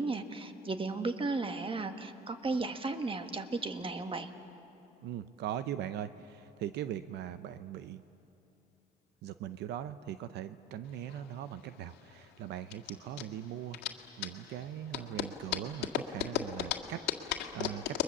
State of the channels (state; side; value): normal; both; correlation 0.36